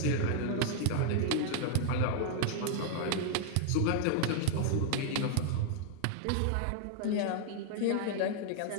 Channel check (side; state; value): both; different; correlation 0.00